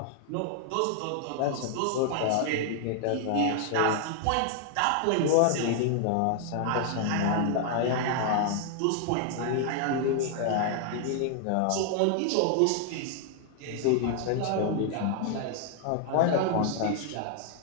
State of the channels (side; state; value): both; different; correlation 0.00